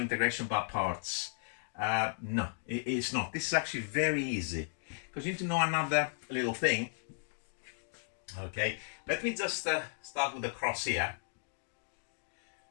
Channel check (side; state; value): right; silent; digital silence